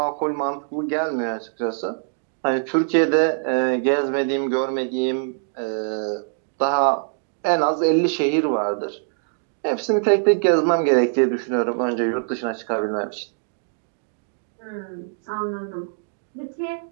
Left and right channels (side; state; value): left; silent; digital silence